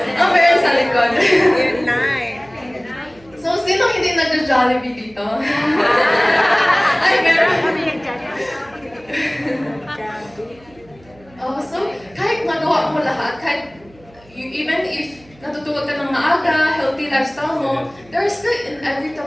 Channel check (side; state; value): right; noise; hum, 27 dB below the sound